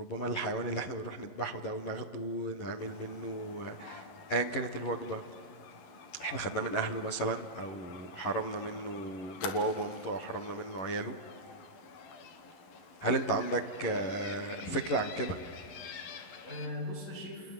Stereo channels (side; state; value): right; late; 11 ms